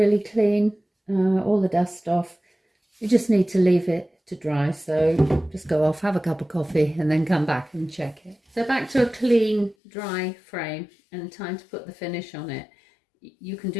clean, all the dust off, you just need to leave it to dry. So just go off, have a cup of coffee, and then come back and check it. So back to a clean, dry frame, and time to put the finish on it. You can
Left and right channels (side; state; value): right; drops out; at 9.8 s